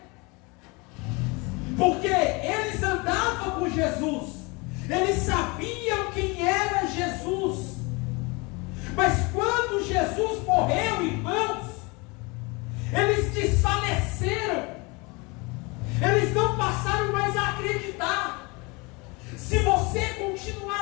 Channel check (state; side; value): quieter; right; 27.4 dB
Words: porque eles andavam com Jesus, eles sabiam quem era Jesus, mas quando Jesus morreu, irmãos, eles desfaleceram, eles não passaram mais a acreditar. Se você